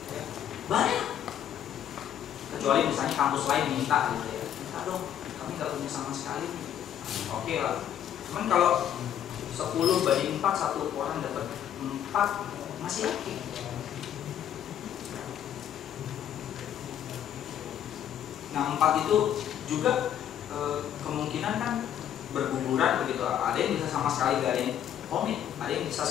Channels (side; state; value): right; quieter; 10.2 dB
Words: Banyak, kecuali misalnya kampus lain minta gitu ya, minta dong, kami nggak punya sama sekali. Oke lah, cuman kalau 10 banding 4, satu orang dapat 4 masih oke. Nah 4 itu juga kemungkinan kan berguguran begitu. Ada yang bisa sama sekali gak ada yang komit, ada yang bisa